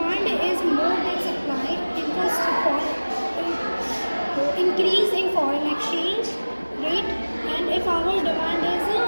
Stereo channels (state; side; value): inverted; both; correlation -1.00